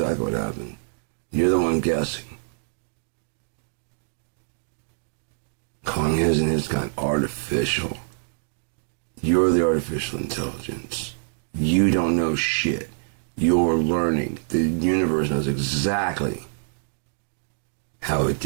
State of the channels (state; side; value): silent; left; digital silence